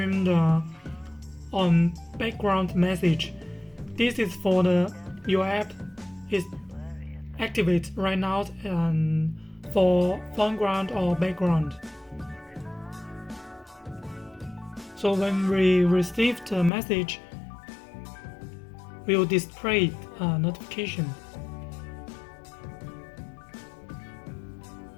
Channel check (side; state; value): right; drops out; at 16.7 s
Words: the background message. This is for your app is activate right now and for foreground or background. So when we receive the message, we will display a notification.